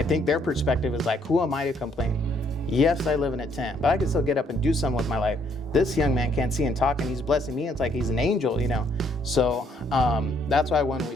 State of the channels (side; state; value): both; normal; correlation 0.68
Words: think their perspective is like, who am I to complain? Yes, I live in a tent, but I can still get up and do something with my life. This young man can't see and talk, and he's blessing me. It's like he's an angel, you know? So that's why when we